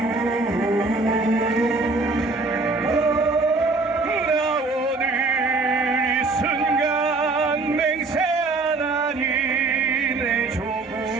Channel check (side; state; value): left; quieter; 3.6 dB